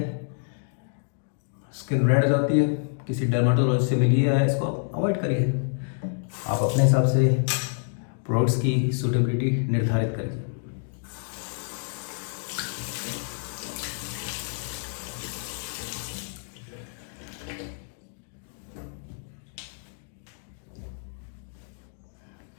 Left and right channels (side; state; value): right; silent; digital silence